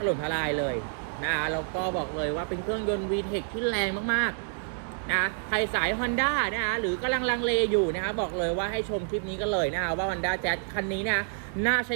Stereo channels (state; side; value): silent; left; digital silence